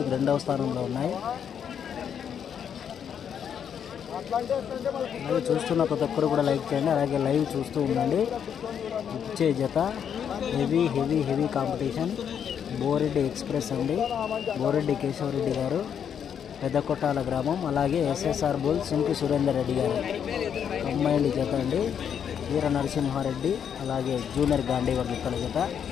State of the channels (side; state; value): right; quieter; 8.2 dB